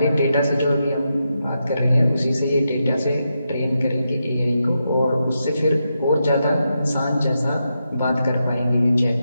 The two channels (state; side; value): inverted; both; correlation -0.86